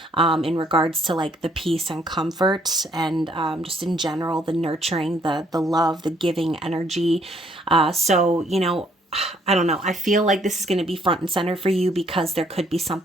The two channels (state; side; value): normal; both; correlation 0.66